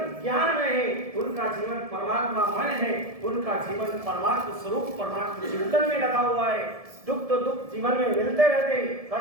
ज्ञान में है, उनका जीवन परमात्मामय है, उनका जीवन परमात्मा स्वरूप परमात्मा चिंतन में लगा हुआ है। दुख तो दुख जीवन में मिलते रहते हैं,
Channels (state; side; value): late; left; 1.7 ms